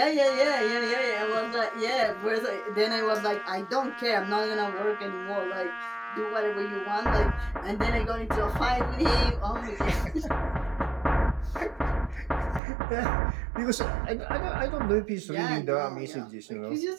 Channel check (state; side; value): drops out; left; at 12.6 s